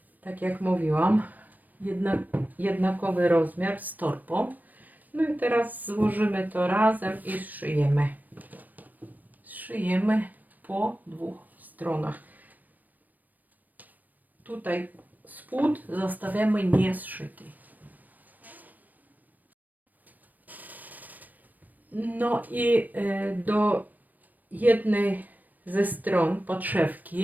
tak jak mówiłam, jednakowy rozmiar z torbą. No i teraz złożymy to razem i zszyjemy. Zszyjemy po dwóch stronach. Tutaj spód zostawiamy niezszyty. No i do jednej ze stron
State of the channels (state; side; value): late; left; 0.084 ms